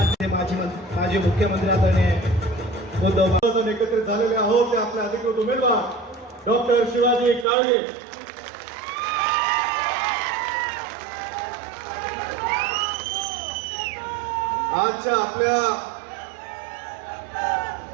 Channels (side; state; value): left; drops out; at 7.5 s